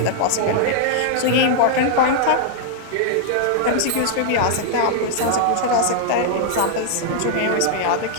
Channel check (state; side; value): different; both; correlation -0.01